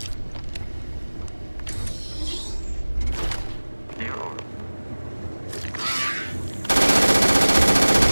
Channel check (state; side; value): inverted; both; correlation -1.00